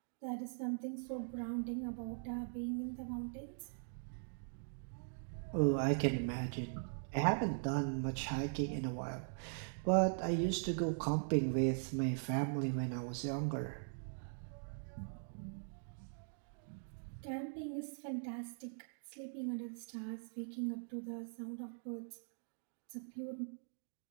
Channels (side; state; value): left; silent; digital silence